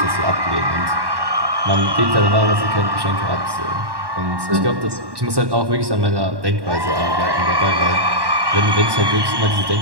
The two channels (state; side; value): late; left; 1.1 ms